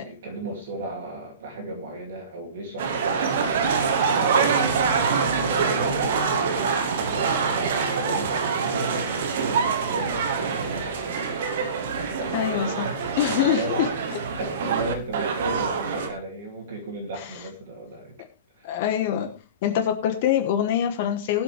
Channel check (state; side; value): inverted; both; correlation -0.38